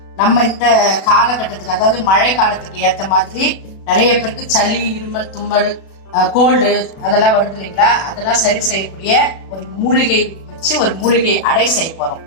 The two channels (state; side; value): late; right; 36 ms